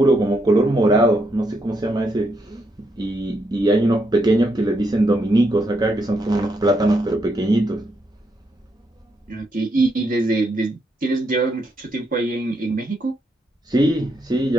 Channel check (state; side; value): normal; both; correlation 0.78